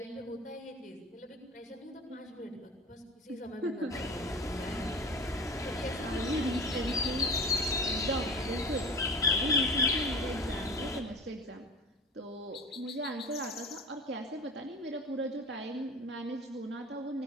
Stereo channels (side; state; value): both; normal; correlation 0.33